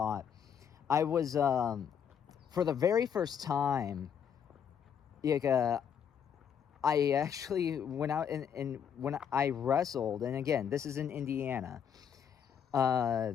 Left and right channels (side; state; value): right; quieter; 8.0 dB